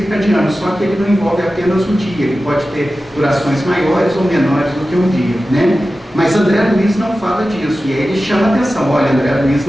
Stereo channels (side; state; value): both; normal; correlation 0.94